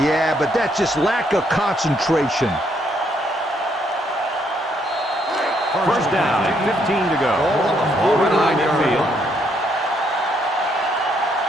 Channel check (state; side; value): normal; both; correlation 0.72